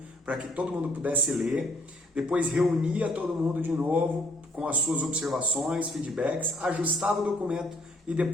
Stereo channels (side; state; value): both; normal; correlation 0.64